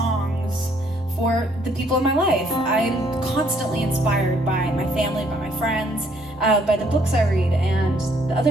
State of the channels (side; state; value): left; noise; hum, 30 dB below the sound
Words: for the people in my life. I'm constantly inspired by my family, by my friends, by the books I read, and the